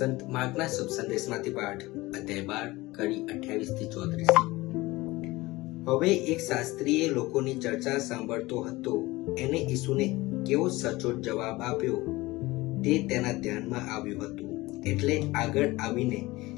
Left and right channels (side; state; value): right; quieter; 20.3 dB